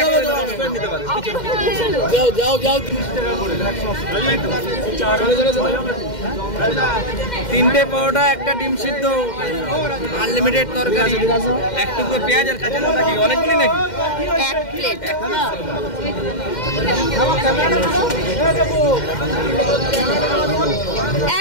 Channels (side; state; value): right; late; 2.1 ms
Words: নিতে পারেন। যাও 30 টাকা করে। 3টে পরোটা, একটা ডিম সিদ্ধ, আনলিমিটেড তরকারি, একটু পেঁয়াজ আর কাঁচা লঙ্কা। কি অনেকগুলি নাকি? এক প্লেট।